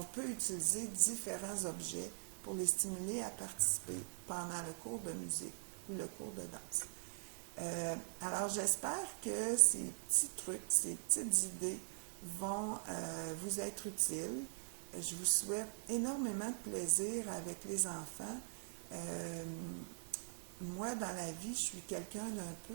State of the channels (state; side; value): silent; left; digital silence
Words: peut utiliser différents objets pour les stimuler à participer pendant le cours de musique ou le cours de danse. Alors, j'espère que ces petits trucs, ces petites idées vont vous être utiles. Je vous souhaite énormément de plaisir avec les enfants. Moi, dans la vie, je suis quelqu'un d'un